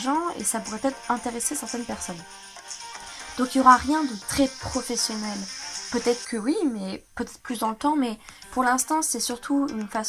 et ça pourrait peut-être intéresser certaines personnes. » Donc il n'y aura rien de très professionnel. Peut-être que oui, mais peut-être plus dans le temps, mais pour l'instant c'est surtout une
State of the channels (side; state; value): both; identical; correlation 1.00